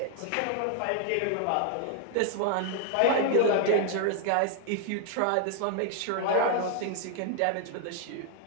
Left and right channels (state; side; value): different; both; correlation 0.00